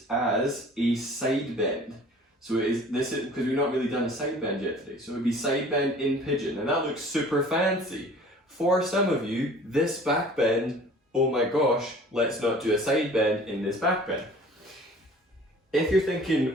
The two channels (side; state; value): both; normal; correlation 0.47